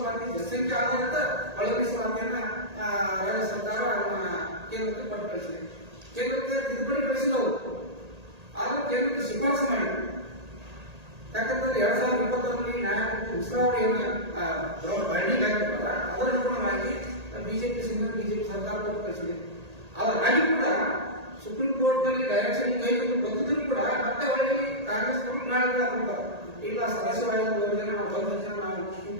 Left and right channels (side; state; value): left; late; 1.8 ms